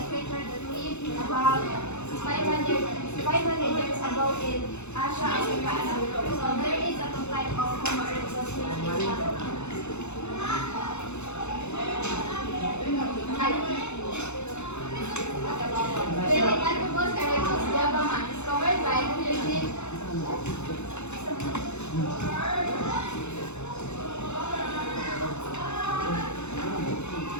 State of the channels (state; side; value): late; right; 0.82 ms